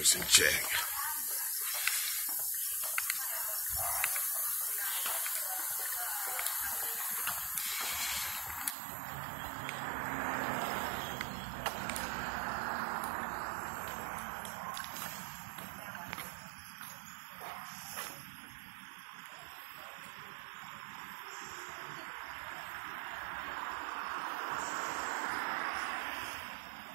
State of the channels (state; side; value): drops out; left; at 8.8 s